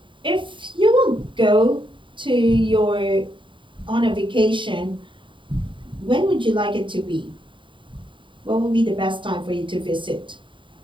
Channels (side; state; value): left; late; 0.24 ms